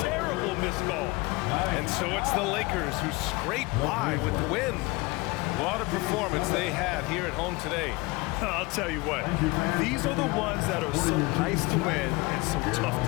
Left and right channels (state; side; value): quieter; right; 23.8 dB